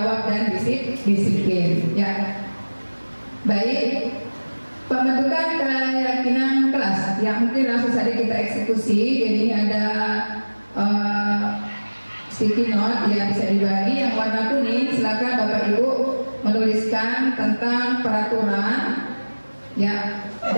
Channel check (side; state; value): both; inverted; correlation -1.00